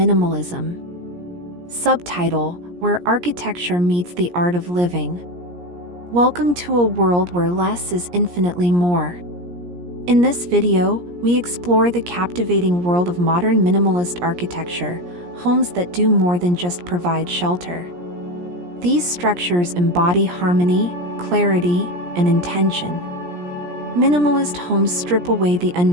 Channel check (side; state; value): left; late; 17 ms